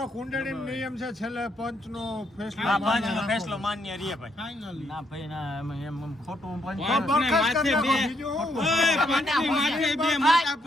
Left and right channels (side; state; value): both; normal; correlation 0.74